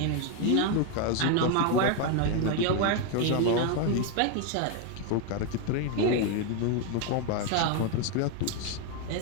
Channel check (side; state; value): both; different; correlation 0.01